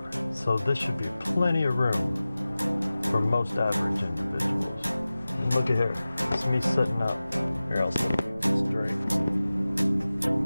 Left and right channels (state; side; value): inverted; both; correlation -0.97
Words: so this should be plenty of room for most average individuals. And look at here, it's me sitting up. Here, I'll sit straight.